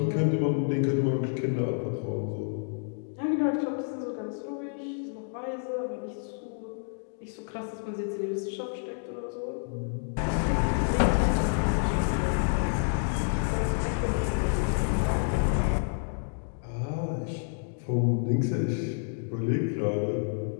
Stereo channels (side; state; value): right; silent; digital silence